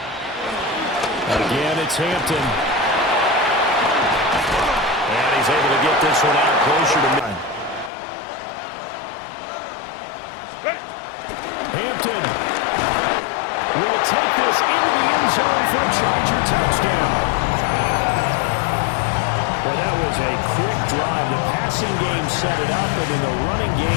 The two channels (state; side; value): drops out; right; at 7.9 s